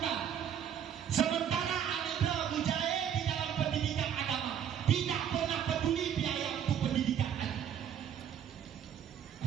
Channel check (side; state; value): left; quieter; 8.9 dB